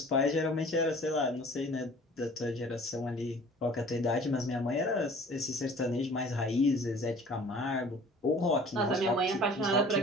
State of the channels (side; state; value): both; normal; correlation 0.48